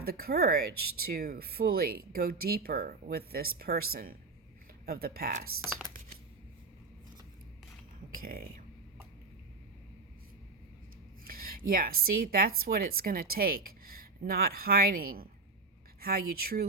the courage to fully go deeper with this person of the past? Okay. Yeah, see, that's what it's going to take. Not hiding how you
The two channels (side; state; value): left; quieter; 3.9 dB